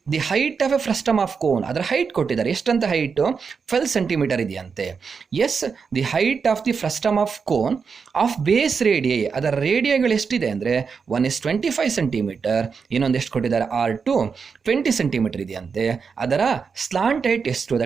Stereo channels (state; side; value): quieter; left; 5.6 dB